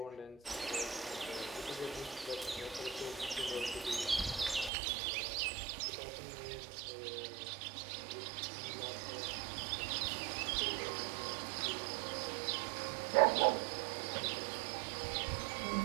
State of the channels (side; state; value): left; drops out; at 4.7 s